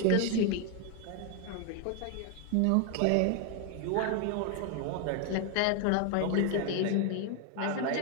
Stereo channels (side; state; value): both; different; correlation 0.01